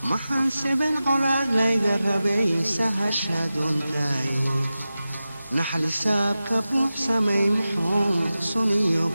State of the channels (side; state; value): both; inverted; correlation -0.94